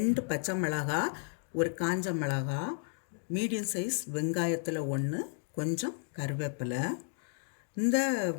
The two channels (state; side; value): silent; right; 56 dB below the other